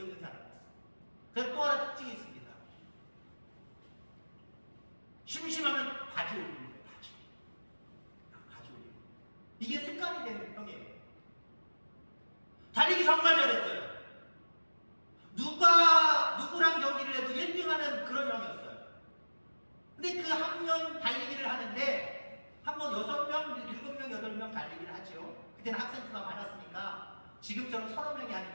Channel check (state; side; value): inverted; both; correlation -1.00